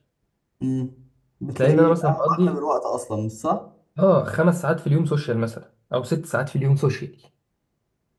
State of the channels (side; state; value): both; identical; correlation 1.00